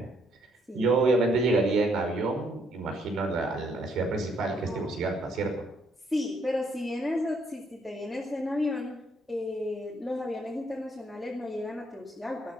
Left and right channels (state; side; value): normal; both; correlation 0.70